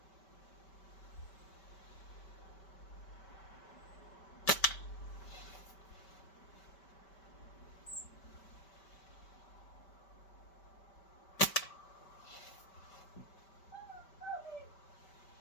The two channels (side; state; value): right; late; 5.2 ms